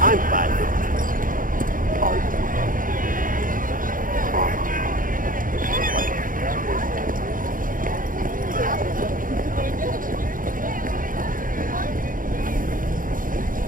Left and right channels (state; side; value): late; left; 0.40 ms